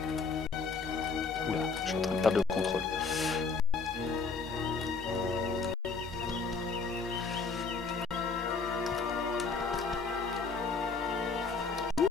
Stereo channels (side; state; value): right; quieter; 4.7 dB